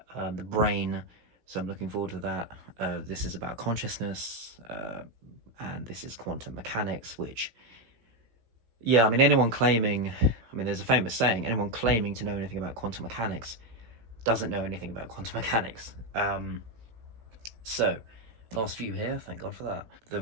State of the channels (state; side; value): late; left; 17 ms